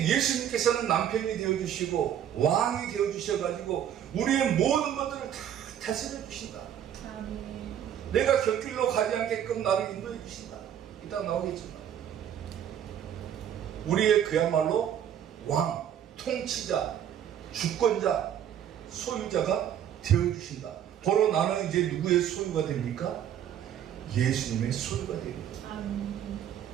예수님께서는 남편이 되어주시고 왕이 되어주셔가지고 우리의 모든 것들을 다 다스려 주신다. 아멘. 내가 곁길로 가지 않게끔 나를 인도해 주신다. 이따 나오겠지만 우리의 그야말로 왕, 통치자, 주권자, 소유자가 되어주신다. 바로 나는 이제 누구의 소유가 됩니까? 예수님의 소유가 됩니다. 아멘.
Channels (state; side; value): quieter; left; 9.9 dB